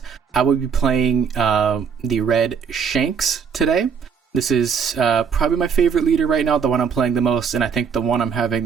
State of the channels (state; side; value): quieter; left; 6.7 dB